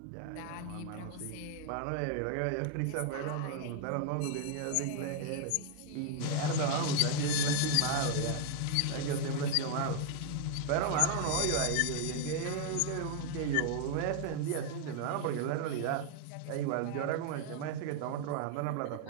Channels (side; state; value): both; different; correlation 0.00